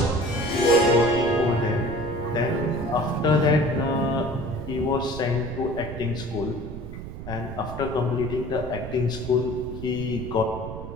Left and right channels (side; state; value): right; noise; rumble, 10 dB below the sound